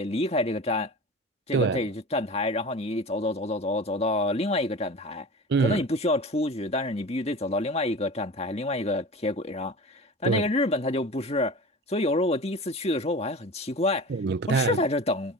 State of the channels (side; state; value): both; normal; correlation 0.34